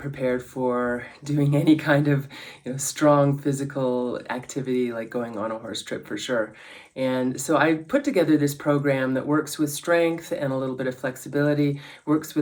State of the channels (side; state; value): both; identical; correlation 1.00